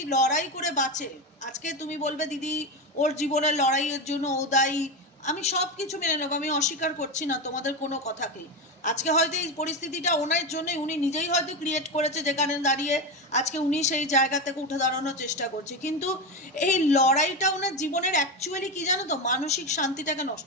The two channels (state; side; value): normal; both; correlation 0.16